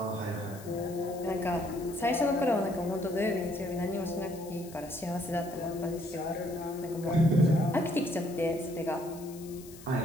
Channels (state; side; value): noise; left; hiss, 19 dB below the sound